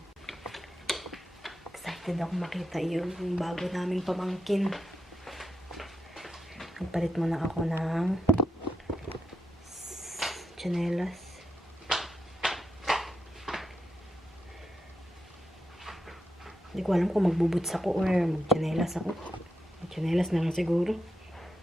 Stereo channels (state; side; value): normal; both; correlation 0.85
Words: Excited ako makita yung bago naming pamangkin. Nagpalit muna ako ng tsinelas. Hindi ko alam kung magbubuts ako or magtsinelas ako. Magtsinelas na lang siguro.